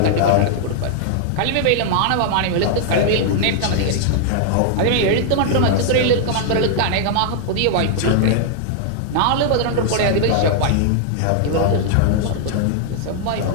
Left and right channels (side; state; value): both; different; correlation -0.01